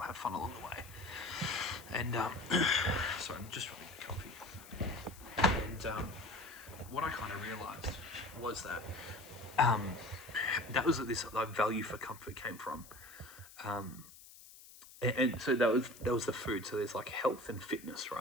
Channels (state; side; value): noise; left; hiss, 19 dB below the sound